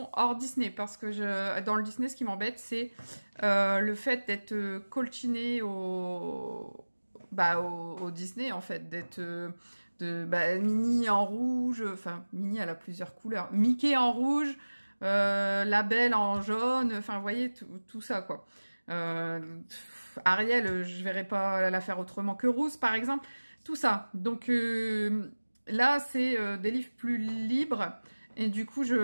hors Disney parce que dans le Disney, ce qui m'embête, c'est le fait d'être colchiné au Disney, en fait, d'être Minnie en rouge, enfin, Minnie, elle a plusieurs couleurs. Mickey en rouge, la Belle en jaune, enfin, vous voyez, tout ça, quoi. Ariel, je verrais pas la faire autrement que Rousse, par exemple. Tout ça. Donc, là, c'est des livres plus libres. Et du coup,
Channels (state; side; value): inverted; both; correlation -1.00